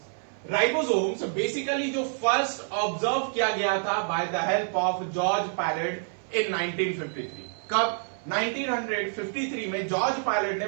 राइबोसोम्स बेसिकली जो फर्स्ट ऑब्जर्व किया गया था by the help of George Palade in 1953। कब? 1953 में जॉर्ज पायलट ने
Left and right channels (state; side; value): silent; left; 60 dB below the other